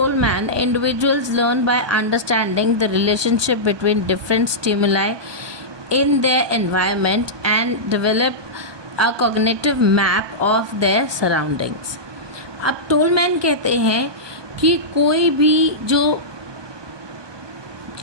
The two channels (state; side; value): late; left; 1.2 ms